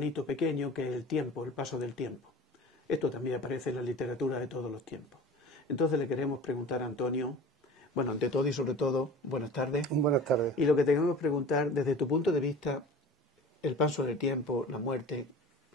pequeño que es el tiempo, el paso del tiempo. Esto también aparece en la literatura de todos los tiempos. Entonces le queremos preguntar a Antonio, bueno, ante todo y sobre todo, buenas tardes. Buenas tardes. Y lo que tenemos que preguntar, desde tu punto de vista, el paso del tiempo, la muerte,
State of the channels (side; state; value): both; normal; correlation 0.39